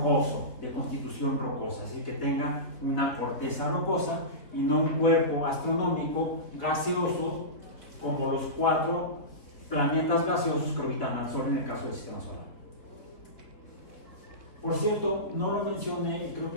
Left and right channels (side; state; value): right; late; 3.9 ms